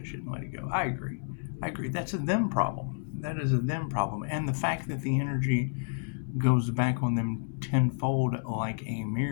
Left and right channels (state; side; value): silent; right; 58 dB below the other